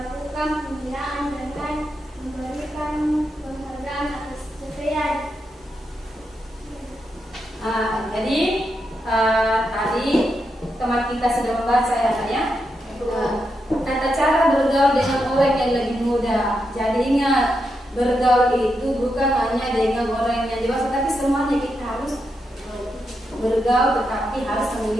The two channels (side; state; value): both; normal; correlation 0.84